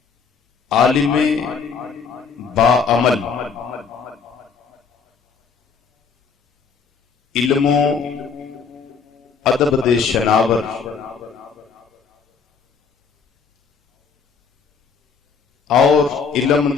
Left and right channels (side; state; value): right; quieter; 5.7 dB